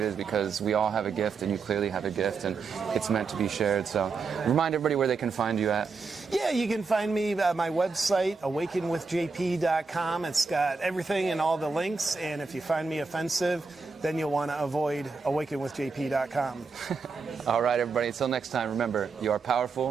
is, because we all have a gift, and you clearly have a gift, and it's meant to be shared. So remind everybody where they can find you at. Yeah, you can find me at my website, awakenwithjp.com. It's got everything and all the links, and if you find me offensive, then you'll want to avoid awakenwithjp.com. All right, everybody. Until next time, remember, you are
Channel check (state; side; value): quieter; left; 4.6 dB